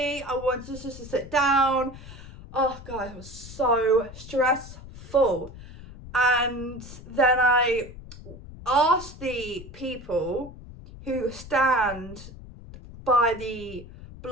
I wanted just to sit down. Oh god, it was so stressful. And then I asked the people who stand by the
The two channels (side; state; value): left; noise; rumble, 15 dB below the sound